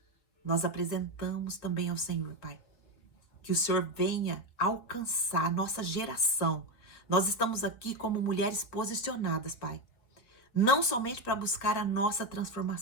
Nós apresentamos também ao Senhor, Pai, que o Senhor venha alcançar a nossa geração. Nós estamos aqui como mulheres posicionadas, Pai, não somente para buscar a nossa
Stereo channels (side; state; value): right; late; 4.4 ms